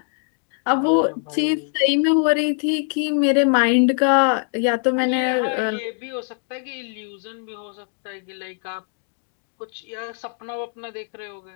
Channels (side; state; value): right; silent; 61 dB below the other